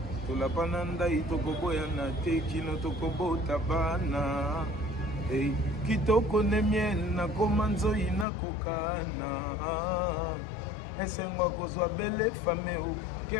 Tolapananda itokoboya na te kino tokobo tabana. Hey, kitoko ne miel na komanzo ina kokana. Esengwa kozwa bele fame o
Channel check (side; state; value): right; drops out; at 8.2 s